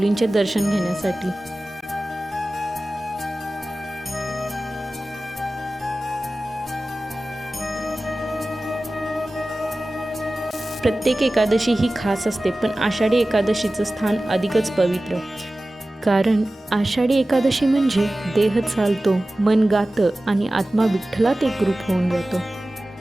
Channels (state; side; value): normal; both; correlation 0.96